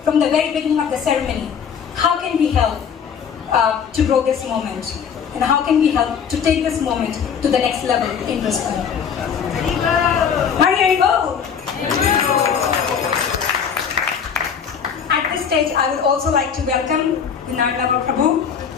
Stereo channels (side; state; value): right; quieter; 7.2 dB